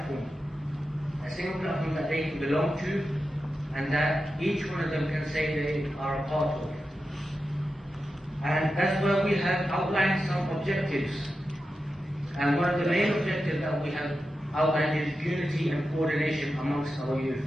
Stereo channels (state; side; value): normal; both; correlation 0.91